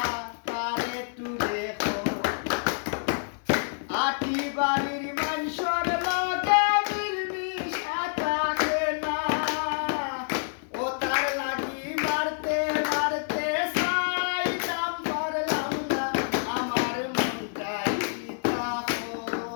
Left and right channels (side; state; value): right; silent; 60 dB below the other